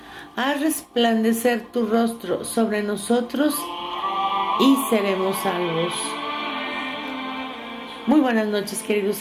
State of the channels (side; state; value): both; identical; correlation 1.00